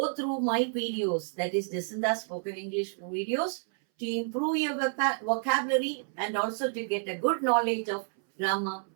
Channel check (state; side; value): silent; left; 58 dB below the other